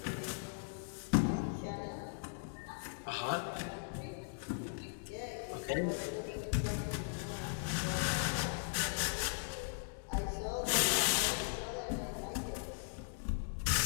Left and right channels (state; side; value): silent; right; digital silence